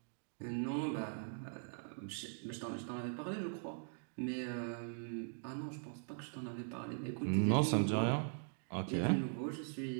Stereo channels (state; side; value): silent; left; digital silence